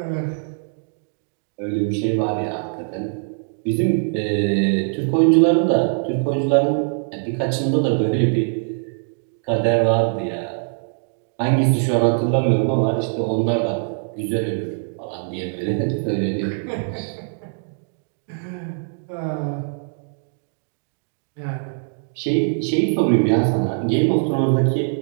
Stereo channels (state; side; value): silent; left; digital silence